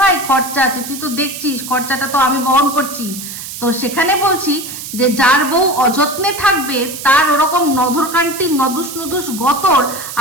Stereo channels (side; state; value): right; noise; hiss, 10 dB below the sound